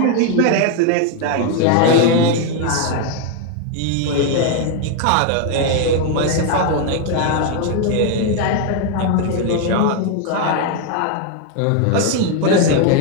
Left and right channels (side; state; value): both; different; correlation 0.00